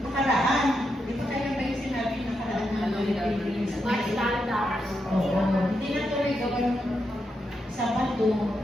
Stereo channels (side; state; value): both; normal; correlation 0.84